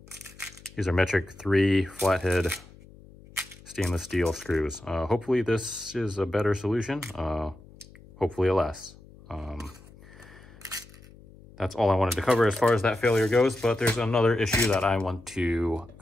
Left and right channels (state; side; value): noise; left; hum, 22 dB below the sound